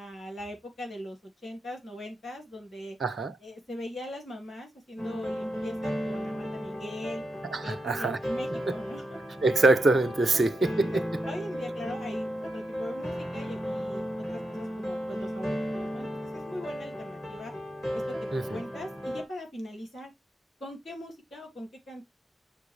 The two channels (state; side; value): normal; both; correlation 0.86